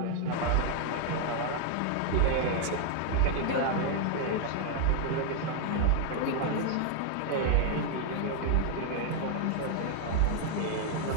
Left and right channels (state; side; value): different; both; correlation -0.01